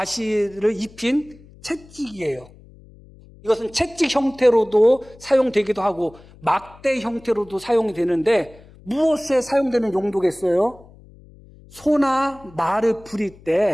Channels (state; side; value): noise; left; hum, 23 dB below the sound